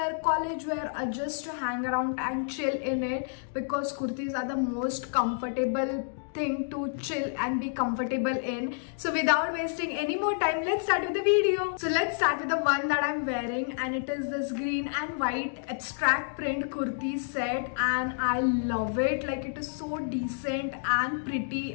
college wear, or just to hang around and chill in it, because kurtis are the most comfortable thing to chill and be comfortable in. So without wasting any more time, let's start with the video. So let's start with the one that I'm wearing, and it is this green and white abstract print kurti set, and I love it. Like, it is so decent and pretty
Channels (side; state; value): right; silent; digital silence